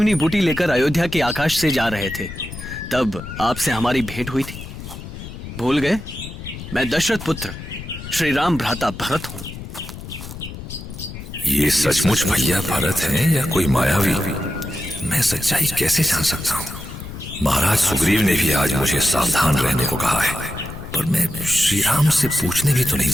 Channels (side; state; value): left; noise; rumble, 11 dB below the sound